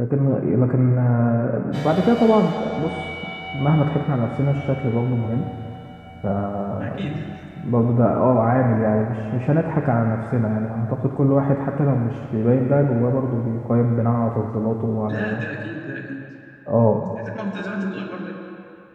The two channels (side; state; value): both; identical; correlation 1.00